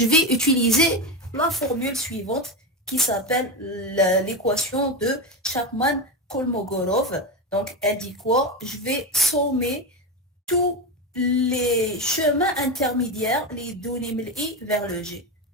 vais utiliser la formule suivante qui s'appelle l'équation de Chapman-Kolmogorov. Donc, elle dit quoi? Je vais sommer tous les chemins intermédiaires, les données من I vers le G.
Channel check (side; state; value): both; normal; correlation 0.16